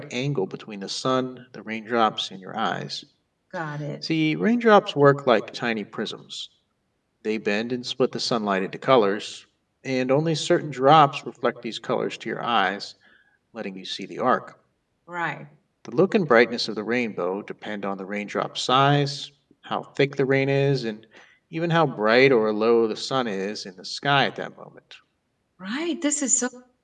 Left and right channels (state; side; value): identical; both; correlation 1.00